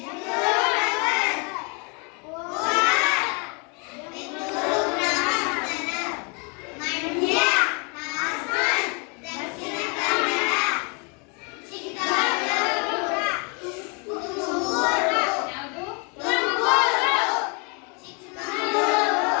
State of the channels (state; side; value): quieter; right; 33.8 dB